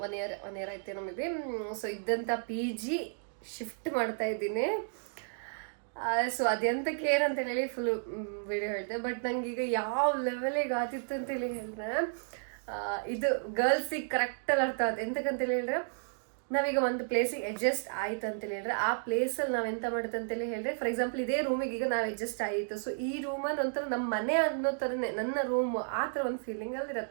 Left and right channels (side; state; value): left; silent; digital silence